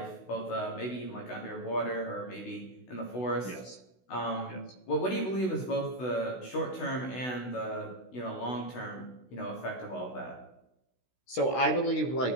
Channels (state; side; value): late; right; 16 ms